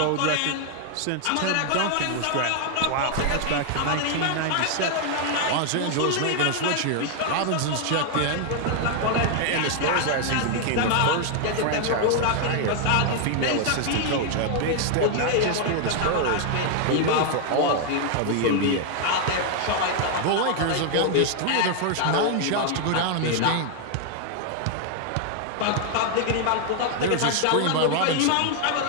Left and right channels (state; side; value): different; both; correlation 0.00